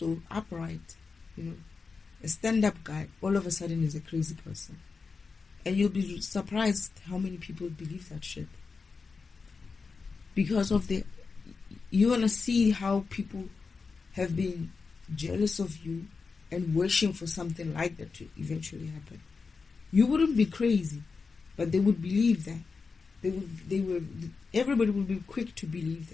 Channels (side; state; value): right; quieter; 4.7 dB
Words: upright, a stand-up guy, all of a sudden is a crazy person. And you'll be surprised how many people believe that shit. Because of you want to see how people have been jealous of you and wishing for something like that to eventually happen. You wouldn't be crazy, but they would believe that. Everybody would be quick to believe